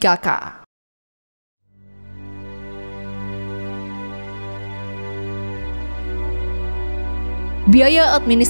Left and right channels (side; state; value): both; inverted; correlation -1.00